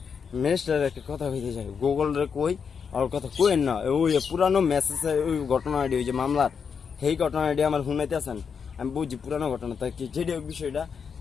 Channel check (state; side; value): quieter; right; 6.4 dB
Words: ম্যানেজারের একটা কথা হইতে চাই, গুগলরে কই ওর কথা কোয়েন না। ওই পুরানো মেসেজে ওই ঘটনাটি, ওই যে মামলার সেই ঘটনাটি আমার শুনাইতেছেন, আমি বুঝছি পুরানো ঘটনা। তাই কি যেটা বিষয়টা,